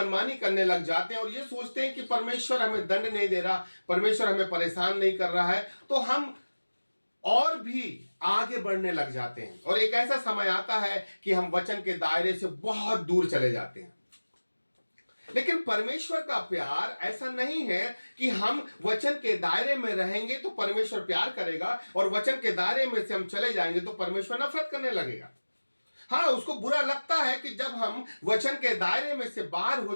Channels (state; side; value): inverted; both; correlation -1.00